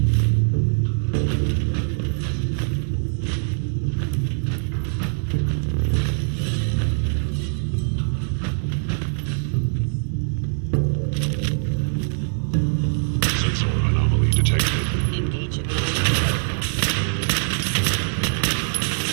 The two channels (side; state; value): left; silent; 64 dB below the other